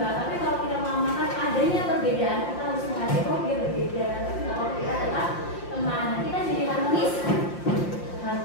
Tapi kalau kita mau makan adanya perbedaan, kita harus menghargai kok dia berbeda. Tapi kalau kita adalah teman, kita jadi harmonis.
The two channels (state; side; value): late; right; 5.7 ms